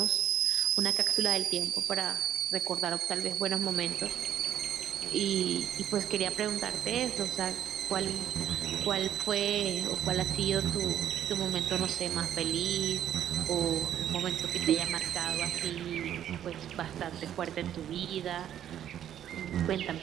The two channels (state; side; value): quieter; left; 10.6 dB